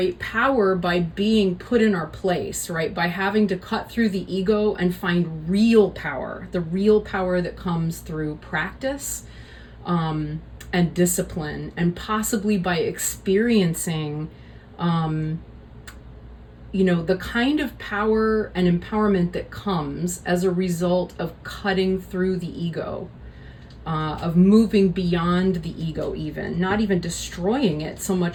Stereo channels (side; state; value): both; identical; correlation 1.00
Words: power by being put in our place, right? By having to cut through the ego and find real power, the real power that comes through practice and discipline, and possibly by experiencing, the kind of power and empowerment that comes as a result of cutting through the ego. Of moving beyond the ego, even not even destroying it so